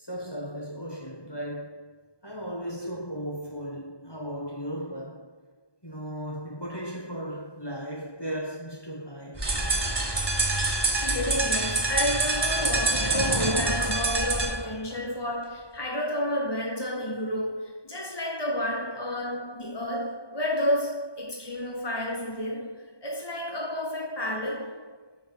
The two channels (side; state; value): right; late; 1.2 ms